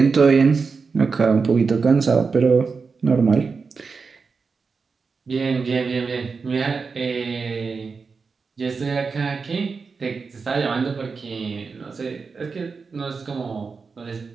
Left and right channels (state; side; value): quieter; left; 4.9 dB